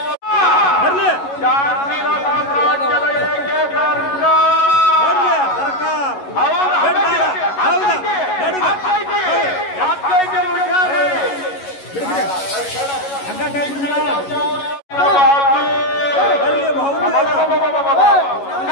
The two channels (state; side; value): late; right; 11 ms